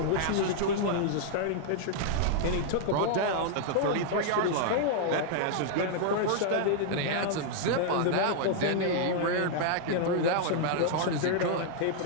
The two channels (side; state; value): both; different; correlation -0.01